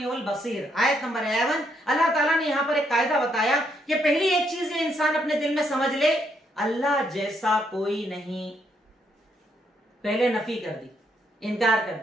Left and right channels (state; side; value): normal; both; correlation 0.74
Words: बसीर। आयत नंबर 11 अल्लाह ताला ने यहां पर एक कायदा बताया कि पहली एक चीज ये इंसान अपने दिल में समझ ले, अल्लाह जैसा कोई नहीं। पहले नफी कर दी, इनकार कर